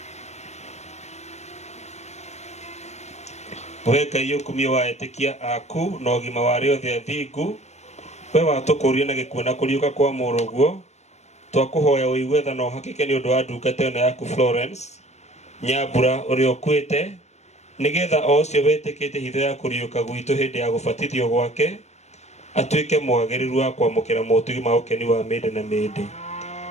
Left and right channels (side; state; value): right; late; 0.32 ms